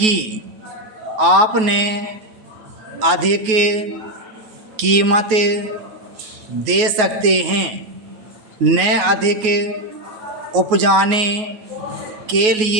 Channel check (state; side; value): late; left; 9.3 ms